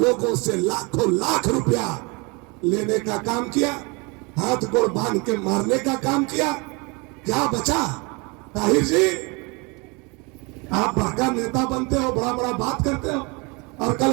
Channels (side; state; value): left; quieter; 28.9 dB